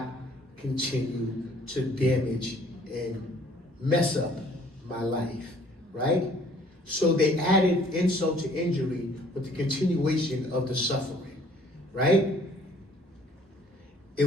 continue to damage and mess up my life, right? So they added insult to injury with the continuation of the suffering, right? It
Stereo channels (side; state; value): both; normal; correlation 0.58